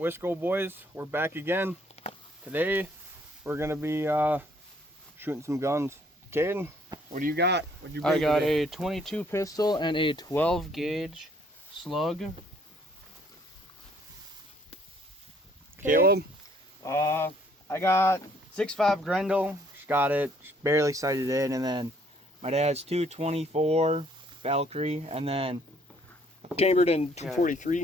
we're back again. Today, we're gonna be shooting some guns. Caden, what do you got? What'd you bring I got today? a 22 pistol and a 12 gauge slug. Caleb? I got 6.5 Grendel. Just got it, just barely sighted in, and then my dad's 224 Valkyrie, and then Chambered in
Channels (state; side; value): normal; both; correlation 0.63